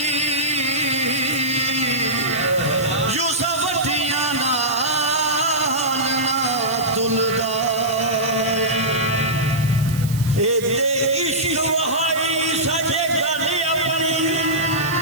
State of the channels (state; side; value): noise; right; hiss, 14 dB below the sound